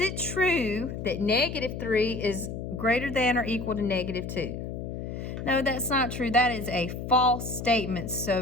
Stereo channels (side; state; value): left; noise; hum, 6 dB below the sound